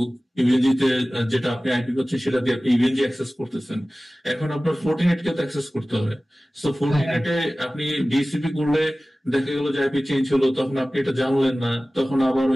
ইভেনজিতে যেটা আপনি আইপি করছেন সেটা দিয়ে আপনি ইভেনজি অ্যাক্সেস করতেছেন। এখন আপনার ফর্টিনেট কে তো অ্যাক্সেস করতে হবে। সো ফর্টিনেটে আপনি ডিএসসিপি করলে দেখা গেল যে আইপি চেঞ্জ হলো, তখন আপনি এটা জানলেন না, তখন আবার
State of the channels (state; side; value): normal; both; correlation 0.97